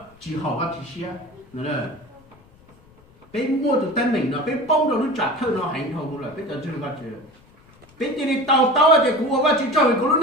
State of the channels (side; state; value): left; noise; rumble, 28 dB below the sound